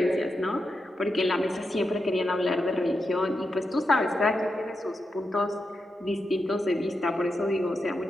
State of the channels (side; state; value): both; normal; correlation 0.87